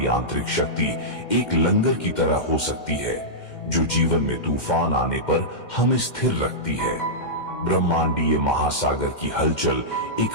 आंतरिक शक्ति एक लंगर की तरह हो सकती है, जो जीवन में तूफान आने पर हमें स्थिर रखती है। ब्रह्मांडीय महासागर की हलचल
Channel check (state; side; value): late; right; 2.1 ms